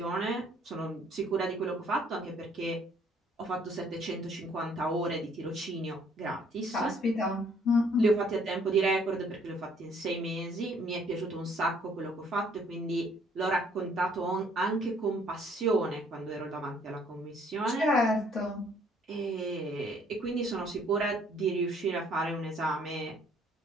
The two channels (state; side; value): normal; both; correlation 0.62